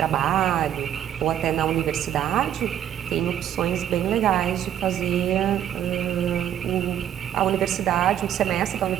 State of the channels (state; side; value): quieter; left; 10.6 dB